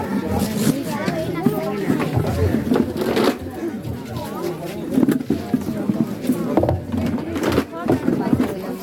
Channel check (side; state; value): both; identical; correlation 1.00